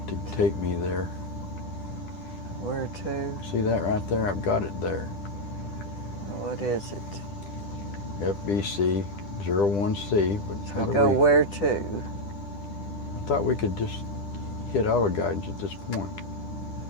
to take me there. Where to? See that right there? I've got it there. What is it? FBC 01C. But how So do go we? where to? I thought we could just hit auto guidance at this point.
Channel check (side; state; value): right; late; 10 ms